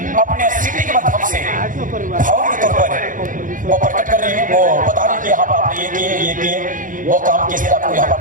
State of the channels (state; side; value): late; left; 0.39 ms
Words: अपने सिटी के माध्यम से भाव के तौर पर वो प्रकट कर रही है, वो बता रही है कि यहाँ पर आपने ये किए वो काम किस तरह आपको यहाँ पर